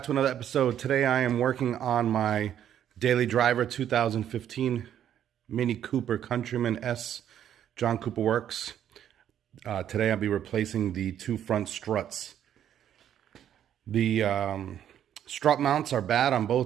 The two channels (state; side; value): quieter; left; 10.2 dB